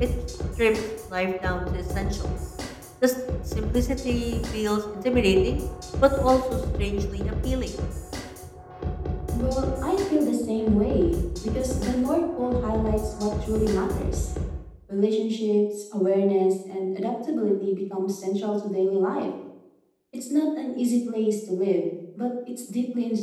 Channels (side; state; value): both; identical; correlation 1.00